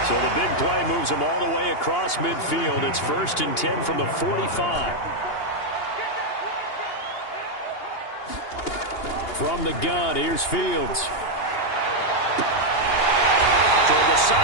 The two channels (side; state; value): right; late; 2.8 ms